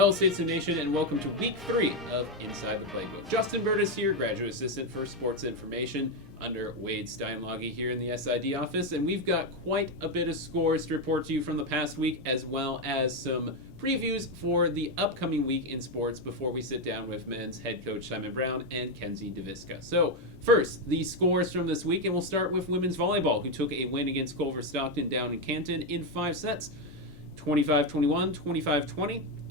Hello, Statesman Nation, and welcome to Week 3 of Inside the Playbook. Justin Burtis here, Graduate Assistant for Sports Information under Wade Steinlage here in the SID office, and we've got quite a bit of scores to report to you from the past week, as well as some previews for the upcoming week in sports before we sit down with men's head coach Simon Brown and Kenedy Deviska. So, first, the scores from this week, and we'll start with women's volleyball, who took a win against Culver Stockton down in Canton in 5 sets. 25-21, 25-20,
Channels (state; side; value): normal; both; correlation 0.07